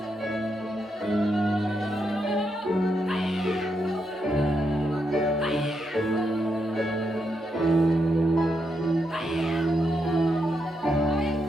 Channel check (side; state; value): both; normal; correlation 0.81